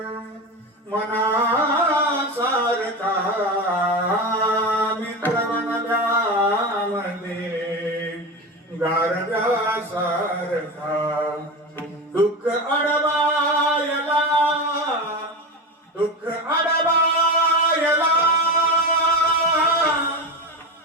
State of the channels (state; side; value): normal; both; correlation 0.21